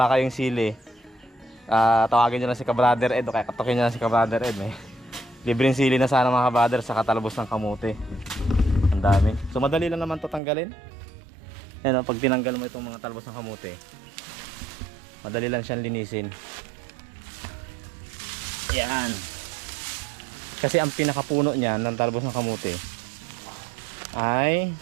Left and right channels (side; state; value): left; drops out; at 10.4 s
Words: kayong sili. Tawagin nyo lang si Ka-Brother Ed o kaya katukin nyo lang si Ka-Brother Ed. Libreng sili na sana mga ka-brother sa katalbos ng kamote. Ang dami. So madali lang naman to tanggalin. Yan, pag tinanggal mo itong mga talbos ng kamote, madali lang siyang linisin. Yan. Kasi ang pinakapuno niya ng talbos ng kamote ay